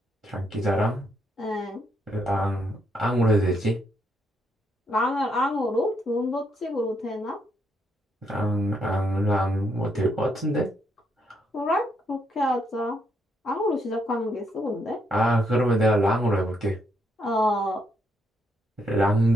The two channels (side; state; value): both; normal; correlation 0.75